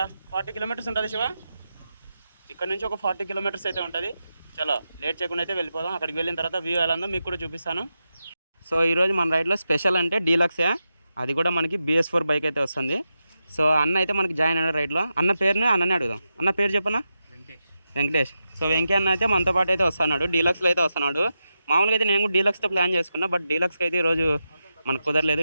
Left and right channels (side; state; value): both; inverted; correlation -0.89